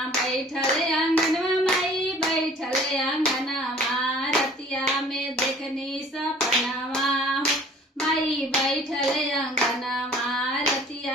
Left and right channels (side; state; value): both; normal; correlation 0.50